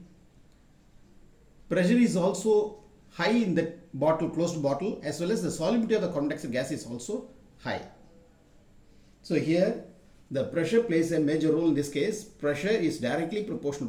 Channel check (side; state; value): both; identical; correlation 1.00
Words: pressure is also high in that bottle, closed bottle, as well as the solubility of the carbon dioxide gas is also high. So here the pressure plays a major role in this case. Pressure is directly